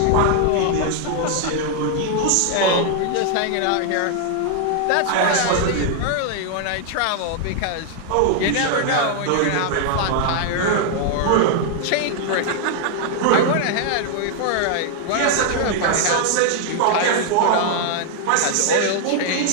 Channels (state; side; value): different; both; correlation 0.00